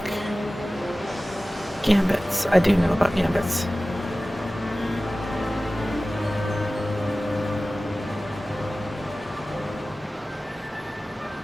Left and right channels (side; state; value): both; normal; correlation 0.97